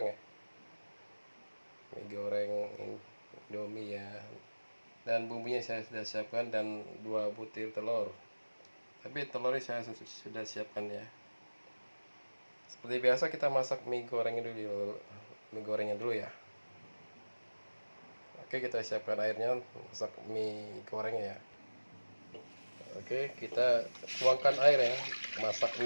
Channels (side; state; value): both; inverted; correlation -1.00